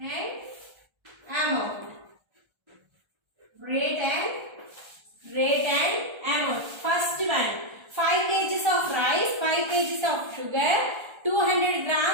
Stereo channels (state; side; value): late; left; 1.3 ms